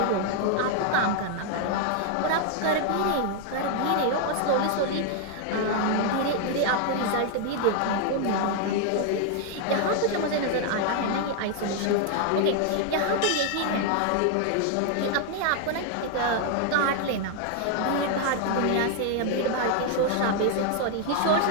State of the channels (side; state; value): both; different; correlation 0.00